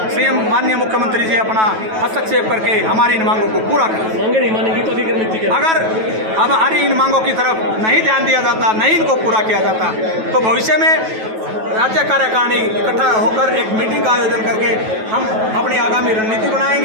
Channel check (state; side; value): late; left; 9.2 ms